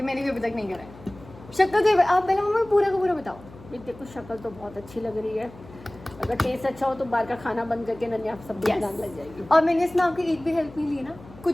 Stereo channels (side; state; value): left; noise; hum, 19 dB below the sound